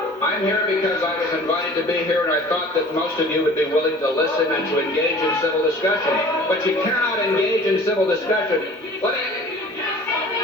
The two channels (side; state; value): both; normal; correlation 0.46